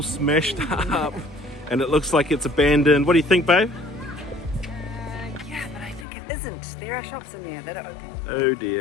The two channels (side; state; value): right; drops out; at 6.1 s